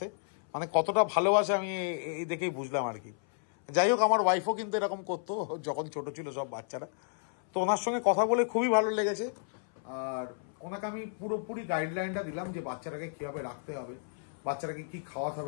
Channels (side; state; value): right; silent; 56 dB below the other